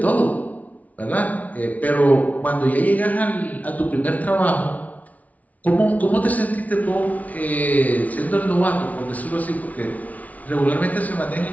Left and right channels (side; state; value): right; late; 0.071 ms